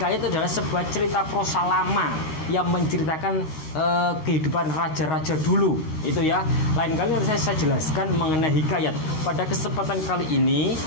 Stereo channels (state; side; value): late; right; 13 ms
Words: itu adalah sebuah cerita prosa lama yang menceritakan kehidupan raja-raja dulu. Itu ya. Lain kali nanti saya jelaskan mengenai hikayat. Pada kesempatan kali ini